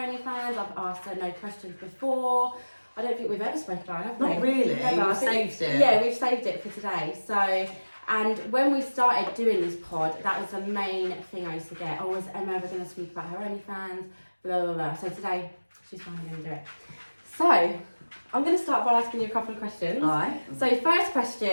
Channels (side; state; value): both; inverted; correlation -1.00